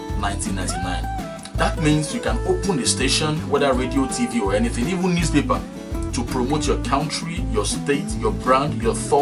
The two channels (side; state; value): both; identical; correlation 1.00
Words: 1999. That means you can open the station, whether radio, TV or anything, even newspaper, to promote your country, your state, your brand, your